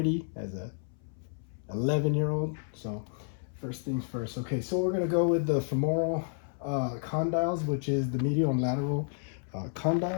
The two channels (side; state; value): right; silent; 57 dB below the other